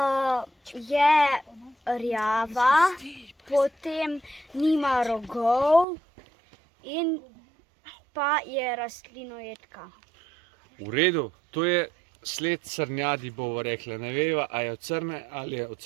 Je rjava, potem nima rogov in pa je rastlinojedka. V redu, to je sled srnjadi, bomo rekli. Ne veva, a je od srne ali je od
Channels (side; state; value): left; drops out; at 5.9 s